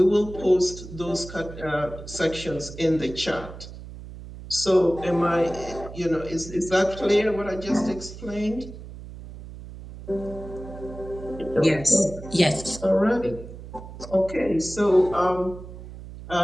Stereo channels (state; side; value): noise; right; hum, 13 dB below the sound